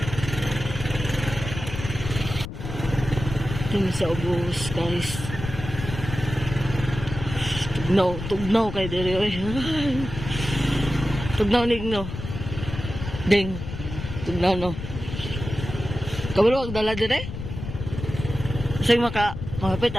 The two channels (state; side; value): noise; left; rumble, 8 dB below the sound